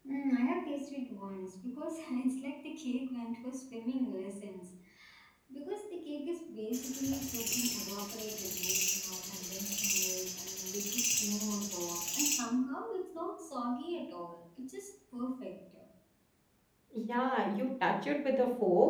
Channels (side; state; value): both; identical; correlation 1.00